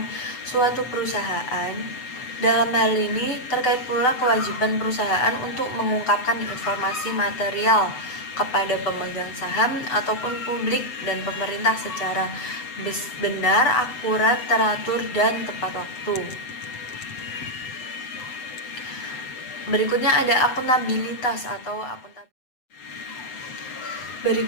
suatu perusahaan. Dalam hal ini terkait pula kewajiban perusahaan untuk mengungkapkan informasi material kepada pemegang saham ataupun publik dan pemerintah secara benar, akurat, teratur, dan tepat waktu. Berikutnya ada akuntabilitas atau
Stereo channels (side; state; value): right; late; 8.0 ms